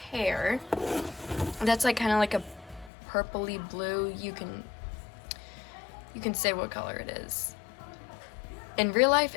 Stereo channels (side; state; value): right; drops out; at 2.9 s